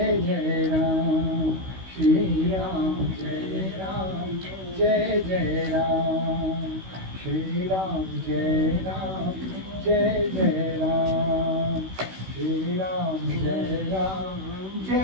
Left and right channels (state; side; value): late; left; 16 ms